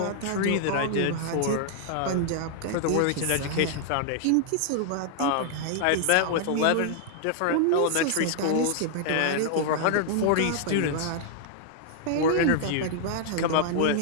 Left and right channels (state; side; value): different; both; correlation 0.00